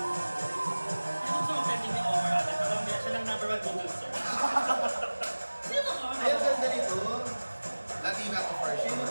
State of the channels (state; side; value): inverted; both; correlation -1.00